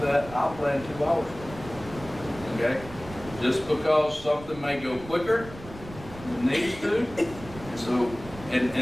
that. I'll plan 2 hours. Okay? Just because something may go quicker than it needs to. So,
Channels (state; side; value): noise; right; rumble, 15 dB below the sound